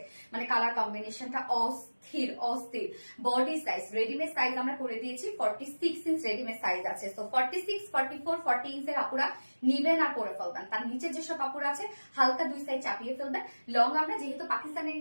মানে কালার কম্বিনেশনটা অস্থির অস্থির। বডি সাইজ, রেডিমেড সাইজ আমরা করে দিয়েছি 46 ইঞ্চ রেডিমেড সাইজ আছে। সো 46, 44, 40 ইঞ্চের আপুরা নিবেন আর পরে ফেলবেন। তার নিচে যেসব আপুরা আছে হালকা 2 সাইজ চাপিয়ে ফেলবেন। লং আমরা যেহেতু পাকিস্তানের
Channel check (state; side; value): inverted; both; correlation -1.00